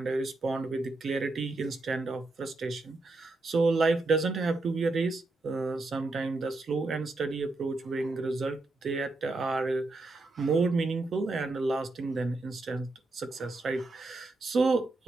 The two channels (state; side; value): quieter; left; 3.1 dB